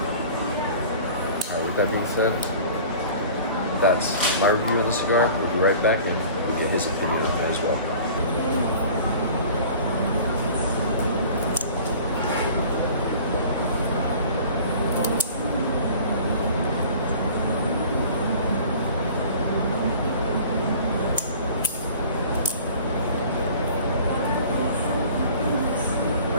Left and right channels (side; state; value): both; inverted; correlation -0.45